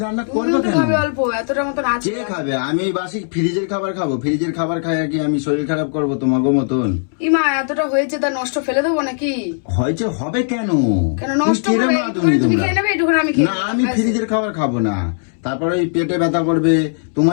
রান্না করবে তুমিও তো কেন? খাবে অল্প, এতটা মতন আছে। কে খাবে? আমি এই বাসি ফ্রিজের খাবার খাবো? ফ্রিজের খাবার খাই আর কি আমি শরীর খারাপ করবো তোমাকে মতন? ইমা এতটা হয়েছে, তা নষ্ট ফেলে দেবো নাকি? হয়েছে হবে কেন? কেন নষ্ট তুমি হবে? কিরম আদমি তুমি তোমরা? খেয়ে নেবে, এটুকুন আমি খেয়ে না, নেবো। আমি ব্যাস। ফ্রিজের খাবার খাবো না, তারপরে ওই পেটে ব্যথা করবে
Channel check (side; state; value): right; silent; 67 dB below the other